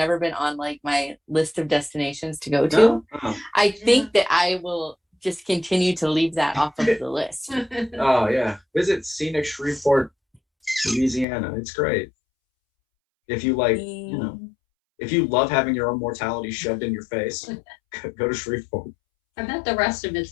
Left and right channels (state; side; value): drops out; right; at 11.2 s